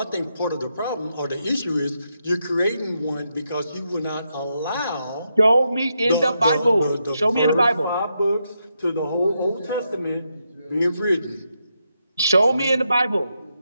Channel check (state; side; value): inverted; both; correlation -0.82